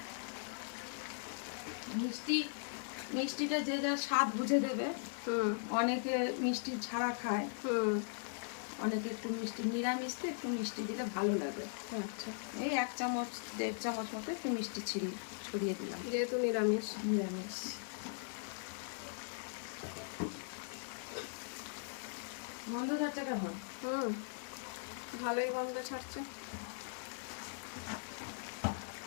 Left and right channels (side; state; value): right; silent; 52 dB below the other